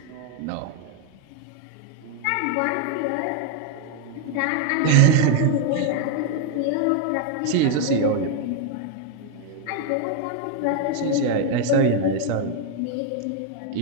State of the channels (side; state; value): both; different; correlation 0.00